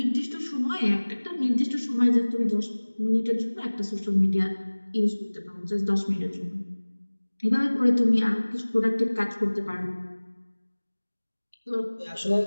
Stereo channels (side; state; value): both; inverted; correlation -1.00